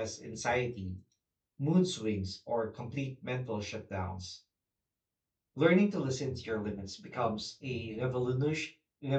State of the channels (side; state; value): both; identical; correlation 1.00